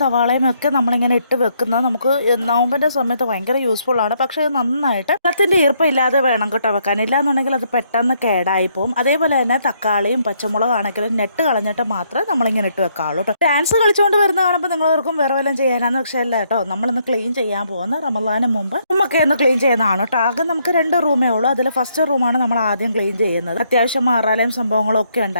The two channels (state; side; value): inverted; both; correlation -0.72